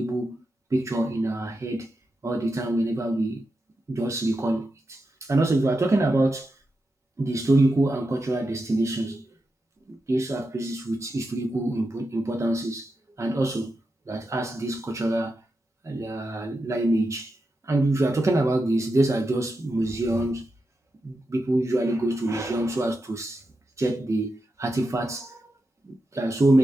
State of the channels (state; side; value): normal; both; correlation 0.88